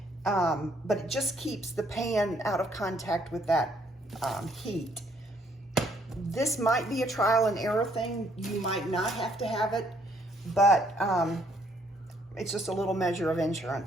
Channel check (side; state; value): both; normal; correlation 0.66